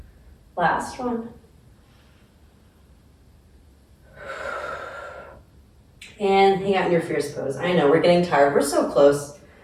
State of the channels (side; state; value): both; identical; correlation 1.00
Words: Last one. And hang out in your fierce pose. I know, we're getting tired. We're so close.